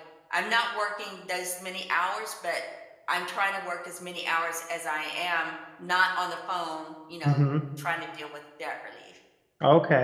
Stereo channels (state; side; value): identical; both; correlation 1.00